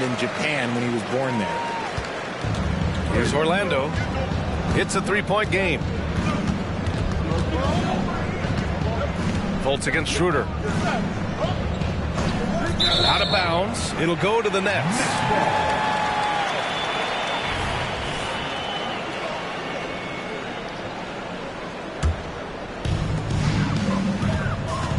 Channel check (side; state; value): both; identical; correlation 1.00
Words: in Japan when he was born there. Here's Orlando. It's a 3-point game. Fultz against Schroeder. Out of bounds. It'll go to the Nets.